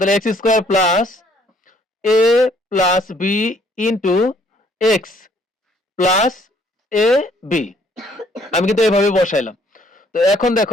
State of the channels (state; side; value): normal; both; correlation 0.63